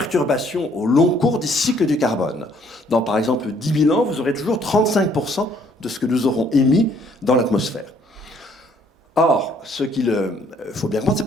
au long cours des cycles du carbone. Dans, par exemple, 10 000 ans, vous aurez toujours 35% de ce que nous aurons émis dans l'atmosphère. Or, ce qu'il faut bien comprendre, ce n'est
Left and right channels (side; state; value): both; normal; correlation 0.63